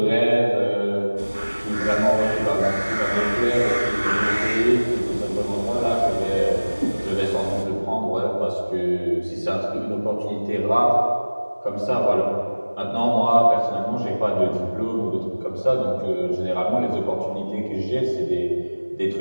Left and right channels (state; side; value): inverted; both; correlation -1.00